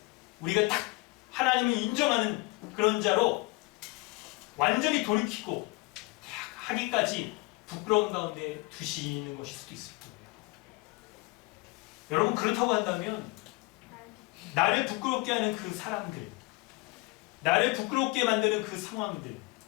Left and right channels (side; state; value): right; quieter; 24.0 dB